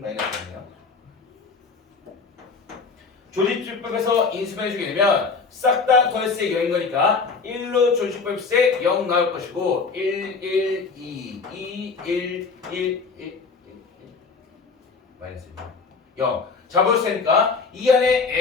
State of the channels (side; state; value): right; quieter; 4.7 dB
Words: 조리집법에서 인수해주게 되면 싹 다 더했을 때 0인 거니까 1로 조리집법했을 때 0 나올 것이고 1, 1, 2, 2, 1, 1, 1 마이너스 0 잡을 수 있으니까 이 안에